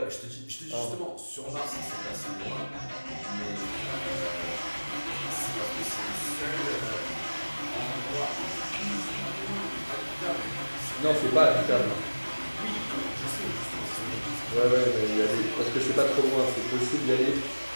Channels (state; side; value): inverted; both; correlation -1.00